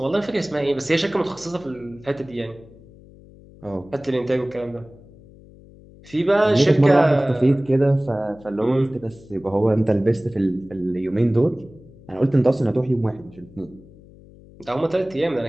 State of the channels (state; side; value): noise; left; hum, 23 dB below the sound